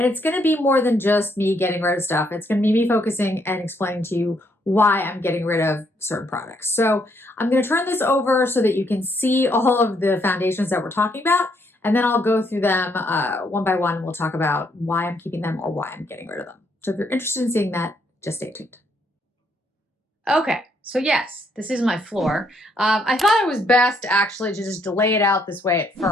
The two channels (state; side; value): normal; both; correlation 0.72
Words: it's going to be more than just me getting rid of stuff. It's going to be me focusing and explaining to you why I'm getting rid of certain products. So I'm going to turn this over so that you can see all of the foundations that we're talking about, and then I'll go through them one by one. We'll talk about why I'm keeping them or why I'm getting rid of them. So if you're interested in seeing that, just stay tuned. Okay. So yes, this is my floor. I thought it was best actually to just lay it out this way at